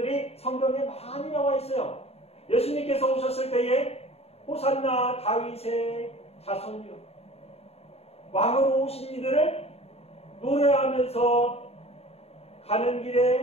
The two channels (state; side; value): late; right; 0.29 ms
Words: 성경에 많이 나와 있어요. 예수님께서 오셨을 때에 호산나 다윗의 자손이요, 왕으로 오신 이들을 노래하면서 가는